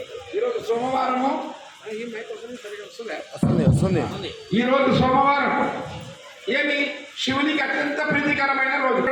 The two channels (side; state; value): both; identical; correlation 1.00